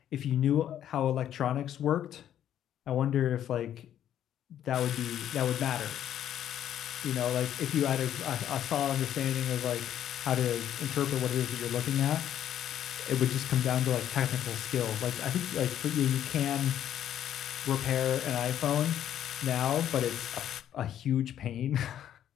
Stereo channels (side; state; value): right; quieter; 10.7 dB